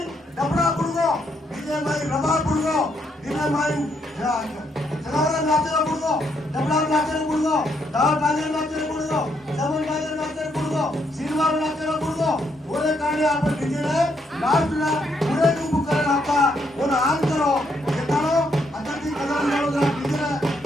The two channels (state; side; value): normal; both; correlation 0.75